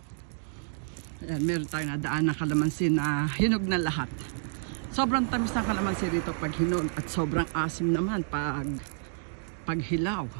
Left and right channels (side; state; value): left; silent; digital silence